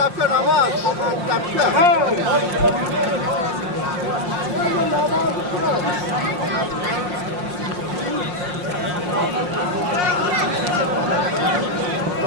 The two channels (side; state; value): left; late; 5.6 ms